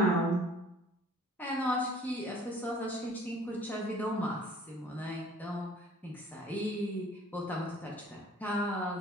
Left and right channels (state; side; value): normal; both; correlation 0.52